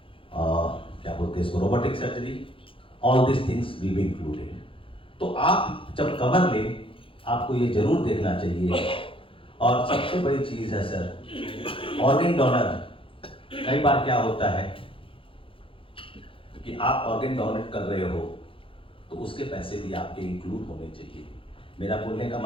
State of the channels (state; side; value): late; right; 0.26 ms